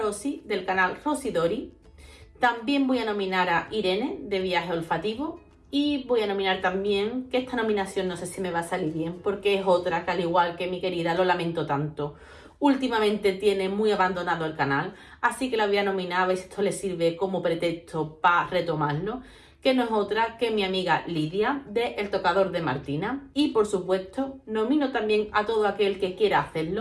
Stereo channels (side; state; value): both; identical; correlation 1.00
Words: del canal Rosidori. También voy a nominar a Irene de Viaje Olfativo. Y voy a nominar también, que esta nominación no sé si me va a salir bien, porque es otra que al igual que mi querida, lo lamento tanto, últimamente tiene muy abandonado el canal, así que la voy a nominar a ver si esto le sirve como pretexto para retomarlo, que no es otra que mi amiga Lidia de El Tocador de Martina. Y por supuesto nomino también a todo aquel que quiera